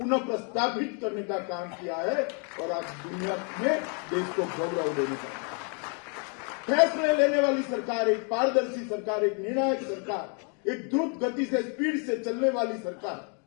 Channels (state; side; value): quieter; right; 38.4 dB